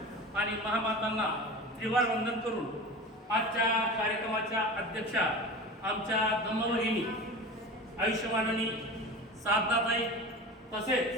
आणि महामातांना त्रिवार वंदन करून आजच्या कार्यक्रमाच्या अध्यक्षा आमच्या धम्मभगिनी आयुष्यमाननी साधनाताई तसेच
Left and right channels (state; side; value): normal; both; correlation 0.32